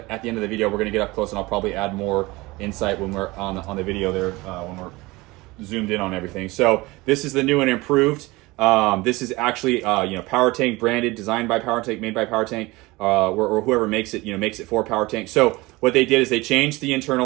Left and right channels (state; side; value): quieter; left; 21.7 dB